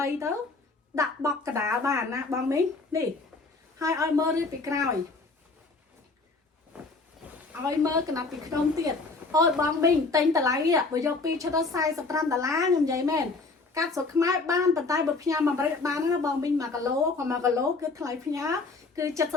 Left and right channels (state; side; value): quieter; right; 3.7 dB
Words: ទៅដាក់បកកដាលបានណាបងមីងនេះហើយឲ្យមើលរៀបពីក្រោយឲ្យមើលកណ្ដាប់ពីក្នុងទៀតអូយបងមីងទិញតម្លៃបើយក2ឈុតដល់$45ខ្ញុំនិយាយមែន កាត់ស្រុកខ្មែរបានប៉ុន្តែបើផ្ញើមកអាមេរិកបានណាបងមីង1គីឡូគាត់1គីឡូគឺថ្លៃផ្ញើគឺ